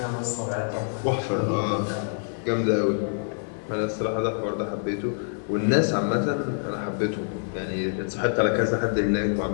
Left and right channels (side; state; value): right; silent; 61 dB below the other